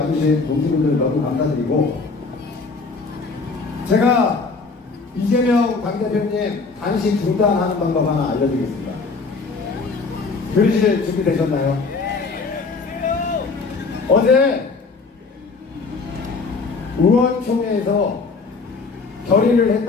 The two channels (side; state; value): right; quieter; 4.3 dB